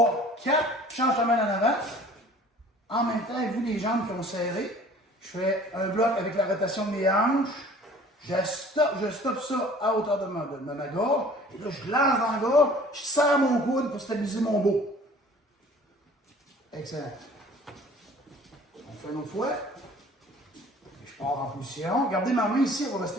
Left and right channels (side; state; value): both; normal; correlation 0.50